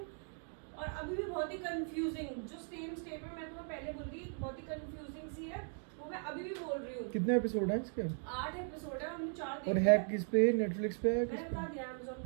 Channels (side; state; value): left; silent; 52 dB below the other